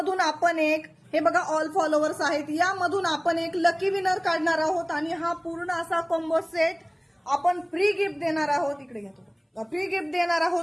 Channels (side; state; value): both; identical; correlation 1.00